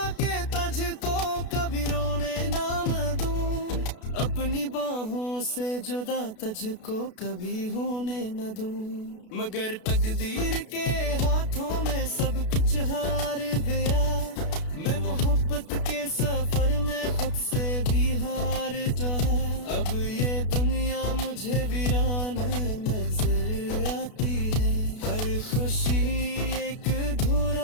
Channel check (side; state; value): right; late; 32 ms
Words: कि तुझको कभी रोने ना मैं दूं, अपनी बाहों से जुदा तुझको कभी होने न दूं। मगर तकदीर के हाथों में सब कुछ हार गया। मैं मोहब्बत के सफर में खुद से भी हार जाऊं। अब ये दुनिया मुझे वीरान नजर आती है। हर खुशी एक